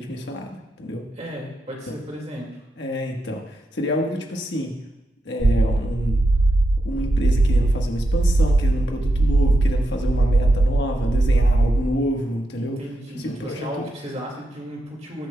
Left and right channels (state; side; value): normal; both; correlation 0.86